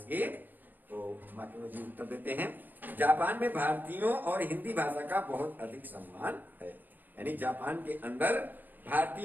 तो मार्टिनो जी उत्तर देते हैं, जापान में भारतीयों और हिंदी भाषा का बहुत अधिक सम्मान है। यानी जापान के अंदर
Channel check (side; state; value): left; late; 0.087 ms